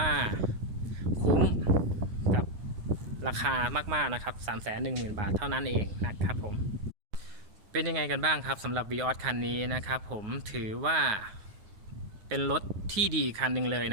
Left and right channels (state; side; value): late; left; 9.5 ms